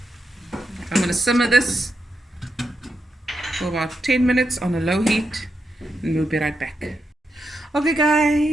I'm going to simmer this for about 10 minutes on a low heat and we'll be right back. Okay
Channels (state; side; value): normal; both; correlation 0.85